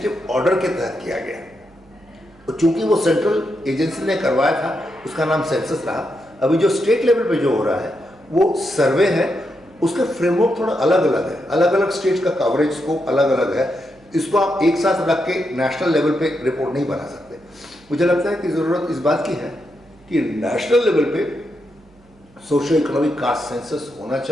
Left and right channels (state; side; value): noise; right; hum, 29 dB below the sound